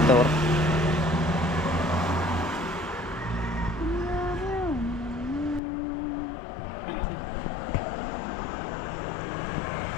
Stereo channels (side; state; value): right; drops out; at 5.6 s